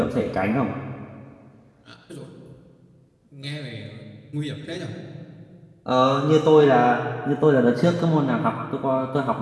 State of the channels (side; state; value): both; identical; correlation 1.00